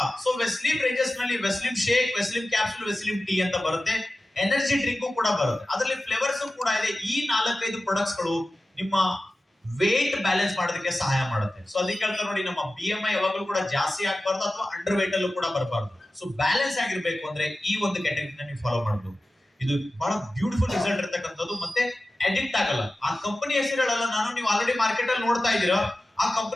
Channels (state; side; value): normal; both; correlation 0.95